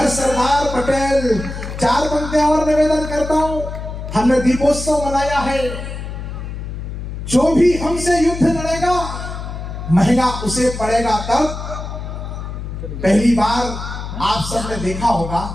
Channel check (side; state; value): left; noise; hum, 8 dB below the sound